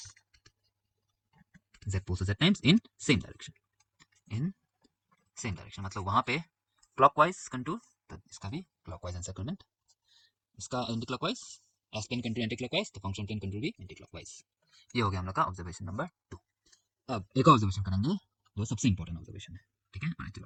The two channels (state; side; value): identical; both; correlation 1.00